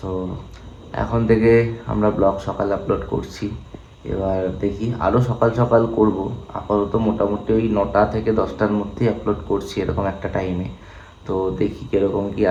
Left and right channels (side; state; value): both; identical; correlation 1.00